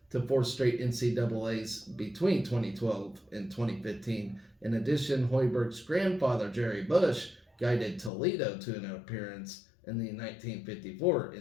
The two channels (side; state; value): right; drops out; at 8.1 s